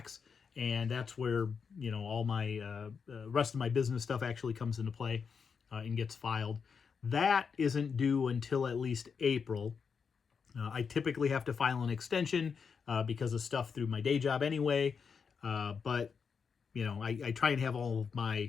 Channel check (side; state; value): right; quieter; 6.0 dB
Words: and that's where all my rest of my business stuff actually comes into play and gets filed. That isn't due until at least April. I typically have to file an extension because of stuff through my day job anyway, but I try and have all of